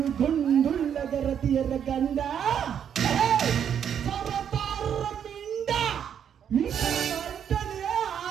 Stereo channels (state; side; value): quieter; left; 8.6 dB